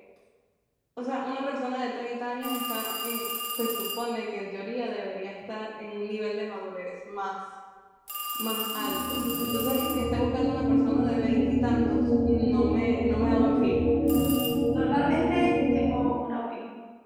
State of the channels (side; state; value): both; identical; correlation 1.00